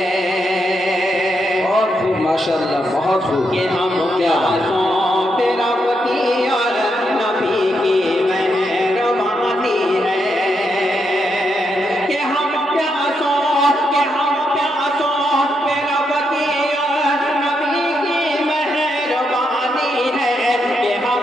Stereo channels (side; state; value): both; normal; correlation 0.81